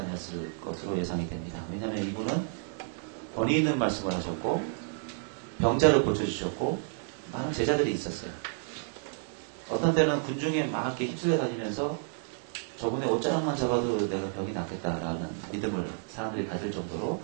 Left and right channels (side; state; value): left; silent; digital silence